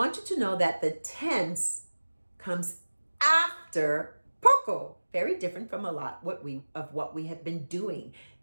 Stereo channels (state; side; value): inverted; both; correlation -1.00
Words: you to know that the tense comes after POKO. Very different from a lot of what we have been doing.